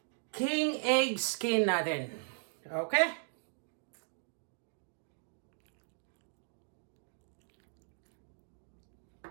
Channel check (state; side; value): silent; left; digital silence